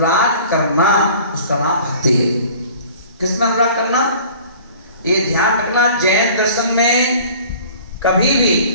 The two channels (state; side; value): inverted; both; correlation -0.47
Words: करना उसका नाम भक्ति है। किसमें अनुराग करना? ये ध्यान रखना, जैन दर्शन में कभी भी